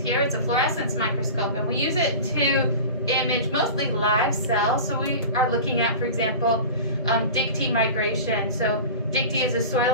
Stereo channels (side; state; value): both; inverted; correlation -0.34